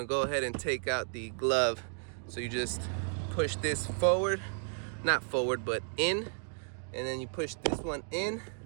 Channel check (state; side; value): silent; left; 56 dB below the other